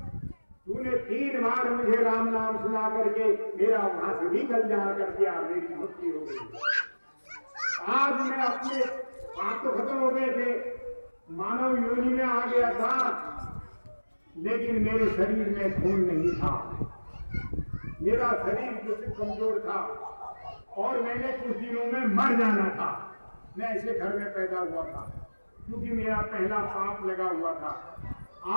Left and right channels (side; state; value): both; inverted; correlation -1.00